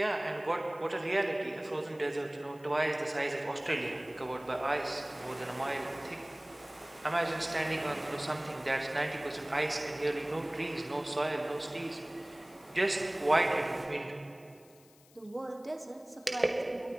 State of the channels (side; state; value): left; noise; hiss, 27 dB below the sound